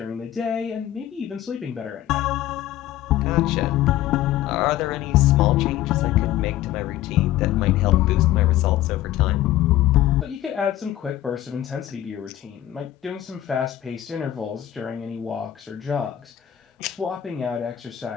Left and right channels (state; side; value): quieter; right; 13.3 dB